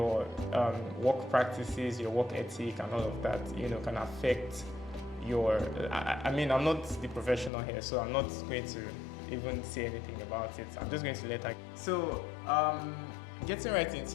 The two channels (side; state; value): right; drops out; at 7.5 s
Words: work practices, your work ethic, and all of that, can affect your. I mean, I'm not the professional here, so I'm not going to even say anything about it. I'm just going to let her. So, getting right